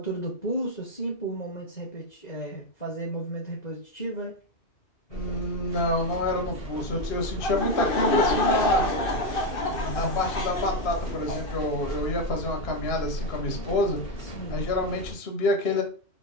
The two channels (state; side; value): late; right; 2.6 ms